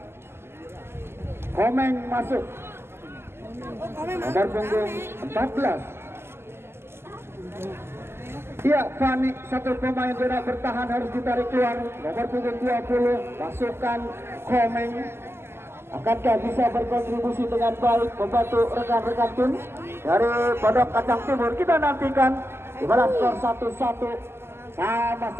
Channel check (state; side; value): late; left; 0.12 ms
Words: Komeng masuk nomor punggung 14. Iya, Fani satu pemain zona bertahan harus ditarik keluar. Nomor punggung 20 masukkan Komeng. Akankah bisa berkontribusi dengan baik membantu rekan-rekan tim dari Pondok Kacang Timur? Kita nantikan di mana skor 1-1